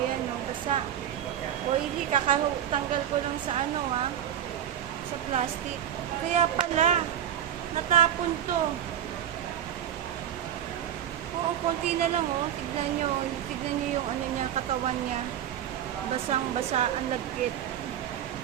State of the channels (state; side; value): quieter; left; 10.2 dB